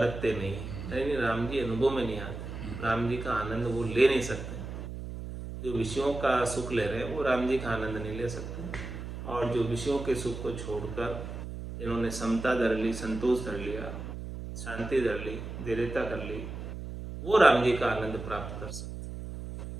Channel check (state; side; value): noise; right; hum, 8 dB below the sound